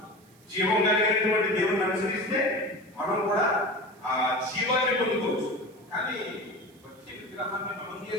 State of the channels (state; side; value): noise; right; hiss, 29 dB below the sound